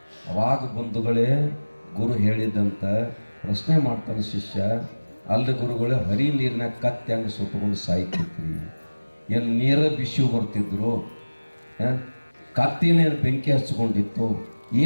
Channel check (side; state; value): both; inverted; correlation -1.00